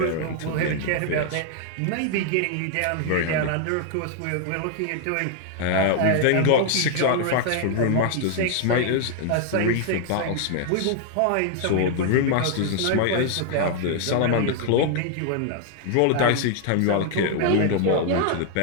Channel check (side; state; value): both; different; correlation 0.00